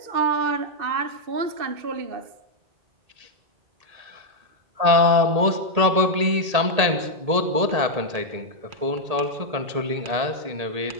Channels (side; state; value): left; late; 1.8 ms